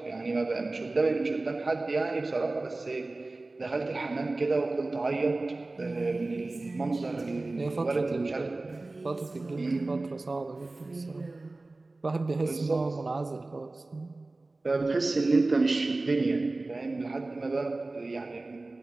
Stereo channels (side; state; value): left; quieter; 3.1 dB